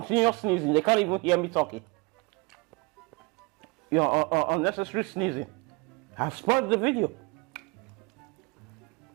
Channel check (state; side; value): quieter; left; 28.0 dB